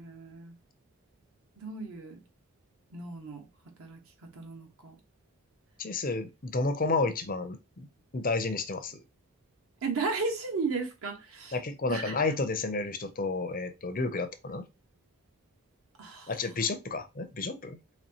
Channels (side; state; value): both; normal; correlation 0.13